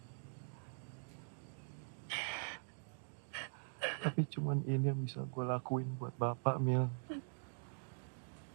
Tapi cuman ini yang bisa gue lakuin buat Bapak, Mil.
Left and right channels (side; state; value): left; silent; digital silence